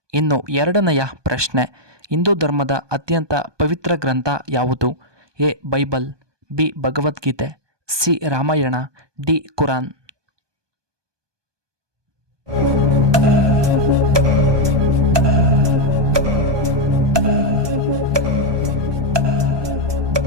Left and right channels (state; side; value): late; left; 1.2 ms